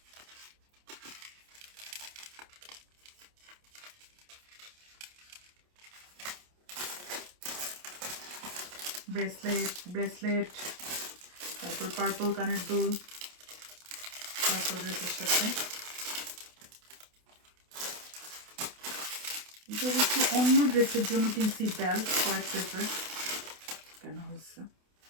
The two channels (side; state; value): left; late; 28 ms